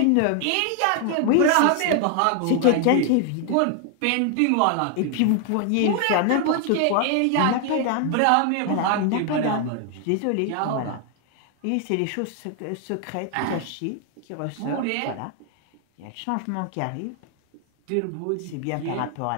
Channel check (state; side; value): different; both; correlation 0.00